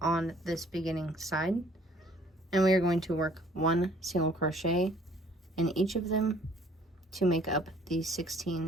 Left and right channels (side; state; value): both; normal; correlation 0.58